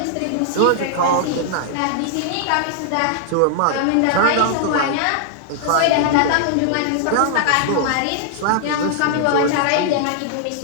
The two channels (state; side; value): different; both; correlation -0.01